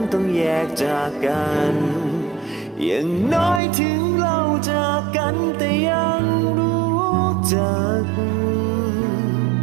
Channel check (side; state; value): left; drops out; at 3.6 s